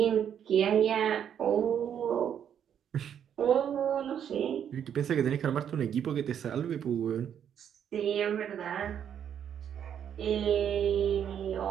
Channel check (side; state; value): left; quieter; 8.9 dB